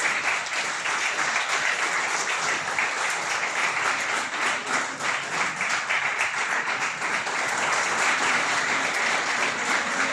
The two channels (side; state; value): both; identical; correlation 1.00